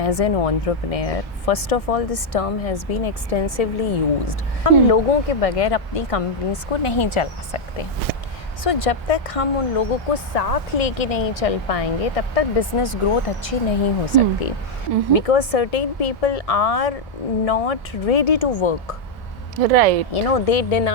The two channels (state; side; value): normal; both; correlation -0.01